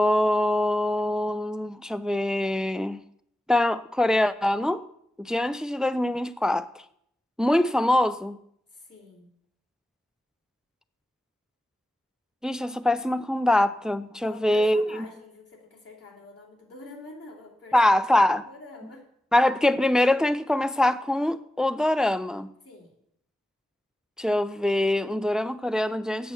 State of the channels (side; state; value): both; normal; correlation 0.93